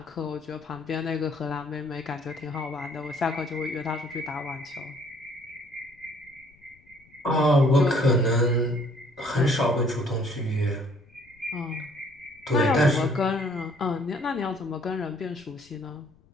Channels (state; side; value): noise; left; rumble, 30 dB below the sound